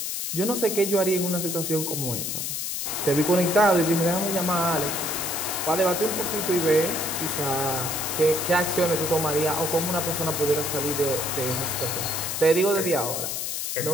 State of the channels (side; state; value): left; noise; hiss, 3 dB below the sound